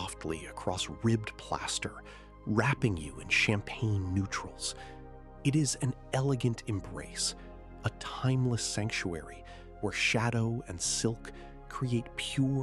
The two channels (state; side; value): identical; both; correlation 1.00